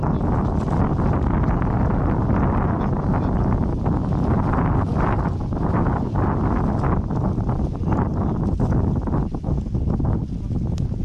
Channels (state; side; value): identical; both; correlation 1.00